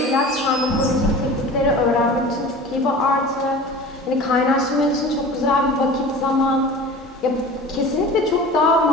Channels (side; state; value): both; normal; correlation 0.38